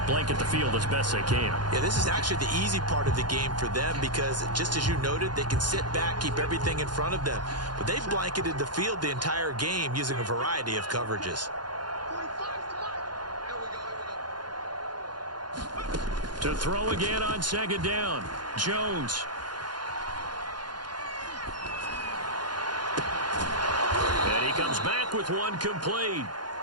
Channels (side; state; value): left; late; 0.71 ms